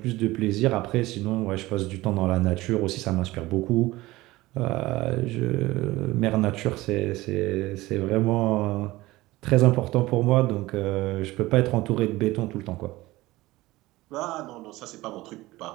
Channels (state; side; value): quieter; left; 18.9 dB